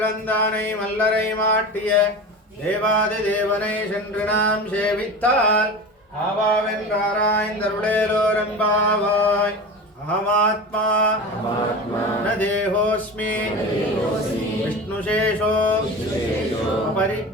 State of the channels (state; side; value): normal; both; correlation 0.30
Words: மல்லரை மாட்டிய தேவாதி தேவனை சென்று நாம் சேவித்தால் ஆவாவென்றாராய்ந்தருளேலோரம்பாவாய். அகமாத்மா ந தேகோஸ்மி விஷ்ணுசேஷோ